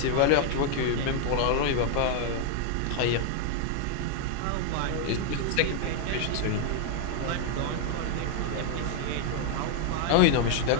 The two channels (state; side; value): different; both; correlation 0.00